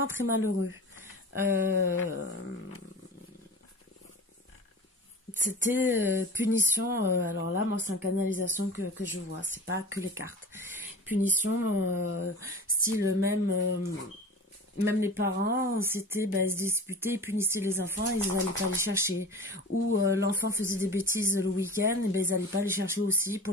très malheureux. C'était punition, alors là, moi, c'est en canalisation que je vois, c'est pas que les cartes. Punition, style même les parents, c'était, ben, ils se disputaient, ils punissaient les enfants, ils n'allaient pas les chercher. Ou l'enfant faisait des bêtises le week-end, et ben, ils n'allaient pas les chercher aussi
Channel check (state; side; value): normal; both; correlation 0.35